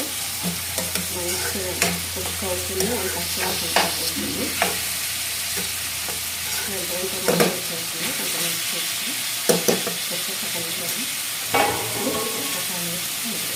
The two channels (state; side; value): identical; both; correlation 1.00